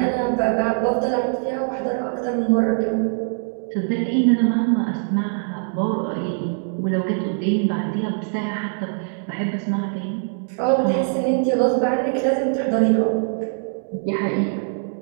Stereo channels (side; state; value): left; silent; 64 dB below the other